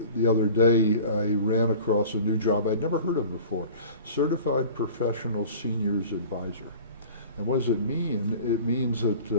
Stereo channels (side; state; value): both; inverted; correlation -0.42